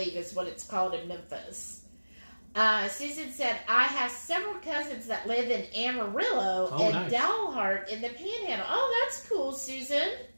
is what it's called in Memphis. Susan said, I have several cousins that live in Amarillo and nice. Dalhart in the Panhandle. Oh, that's cool, Susan.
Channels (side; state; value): both; inverted; correlation -1.00